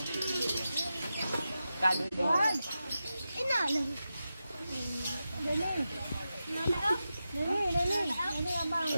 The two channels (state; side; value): inverted; both; correlation -0.91